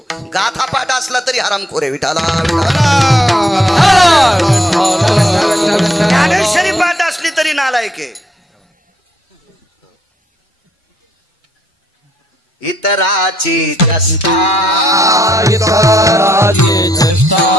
गाथा पाठ असला तरी हरामखोरे. विठाला ज्ञानेश्वरी पाठ असली तरी नालायक आहे. इतराची चेष्टा, इतराची चेष्टा,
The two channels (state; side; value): normal; both; correlation 0.71